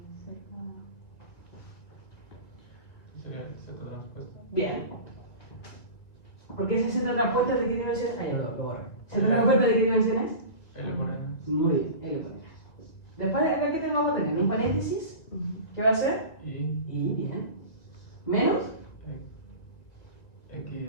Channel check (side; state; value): right; late; 2.2 ms